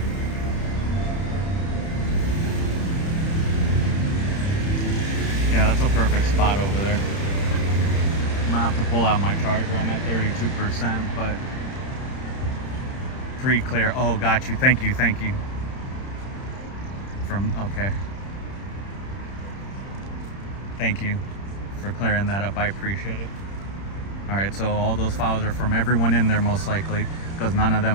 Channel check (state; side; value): late; right; 31 ms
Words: pull out my charger. I'm at 32%, but pre-clear. Oh, got you. Thank you. Thank you. Okay. Thank you for clearing that up. I appreciate it. All right, so all those files are from everyone in there most likely, because none of